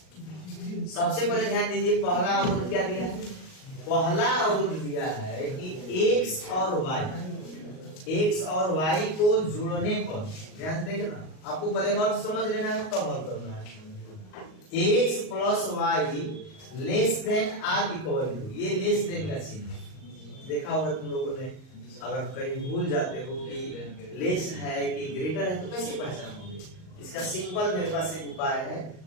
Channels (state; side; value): late; right; 38 ms